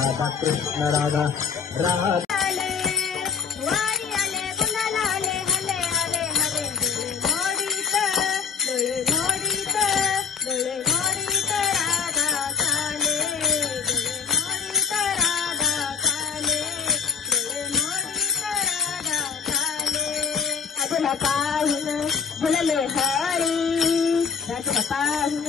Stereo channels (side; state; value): right; quieter; 6.2 dB